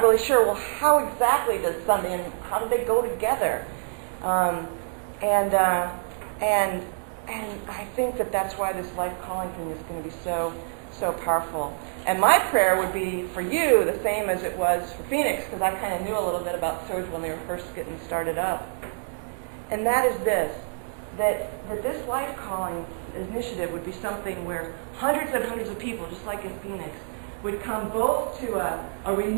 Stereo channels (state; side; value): silent; left; digital silence